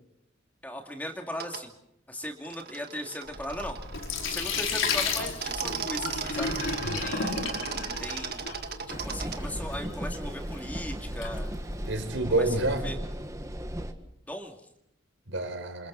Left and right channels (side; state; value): both; normal; correlation 0.22